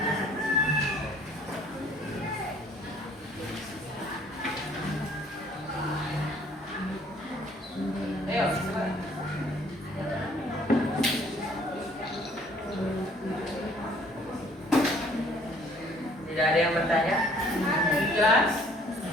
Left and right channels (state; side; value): normal; both; correlation 0.58